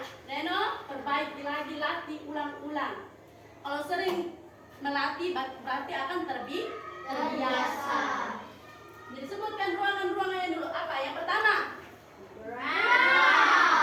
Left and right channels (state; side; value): identical; both; correlation 1.00